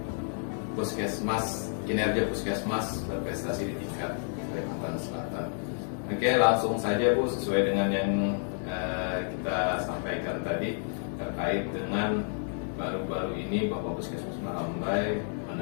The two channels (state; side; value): silent; right; 58 dB below the other